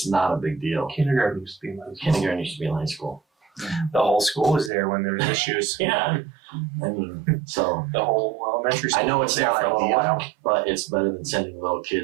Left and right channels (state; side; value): drops out; left; at 4.7 s